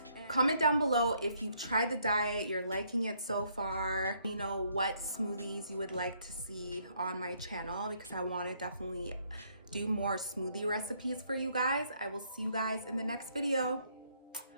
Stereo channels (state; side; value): inverted; both; correlation -0.69